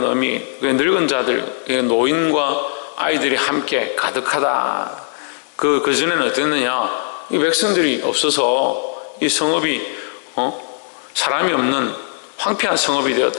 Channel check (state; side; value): silent; right; digital silence